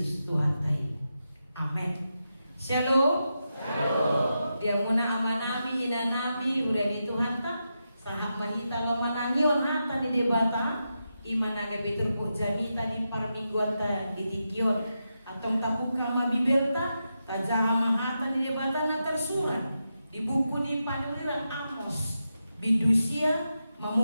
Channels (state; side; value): inverted; both; correlation -0.88